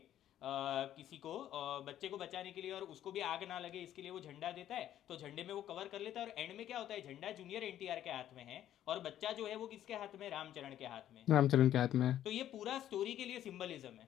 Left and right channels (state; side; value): quieter; right; 11.7 dB